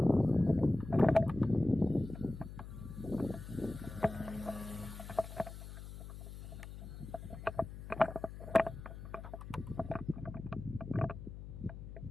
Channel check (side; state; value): left; noise; hum, 11 dB below the sound